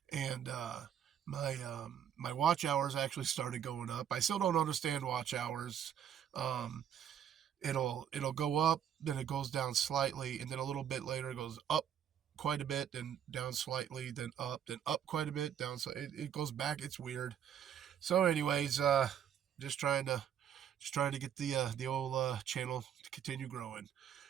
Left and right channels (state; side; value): quieter; left; 9.3 dB